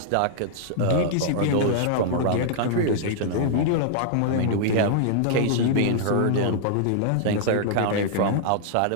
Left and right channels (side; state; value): both; different; correlation -0.01